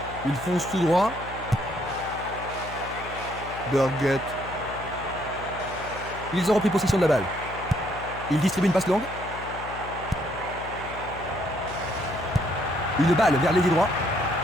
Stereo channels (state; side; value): noise; left; hum, 13 dB below the sound